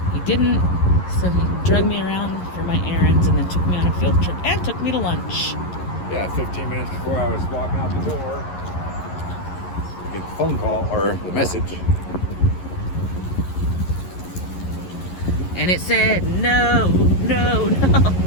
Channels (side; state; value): right; late; 11 ms